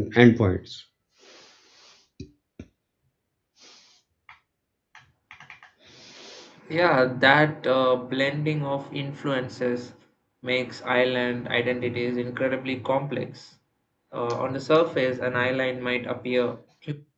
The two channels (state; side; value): identical; both; correlation 1.00